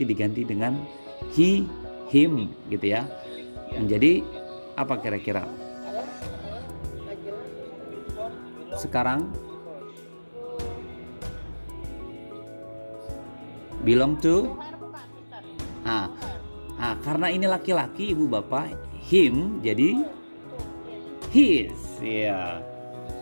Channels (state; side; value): inverted; both; correlation -1.00